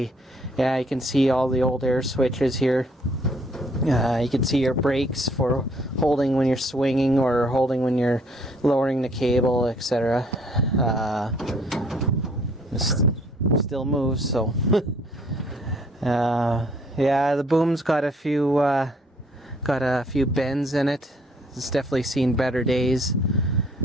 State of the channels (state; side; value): normal; both; correlation 0.62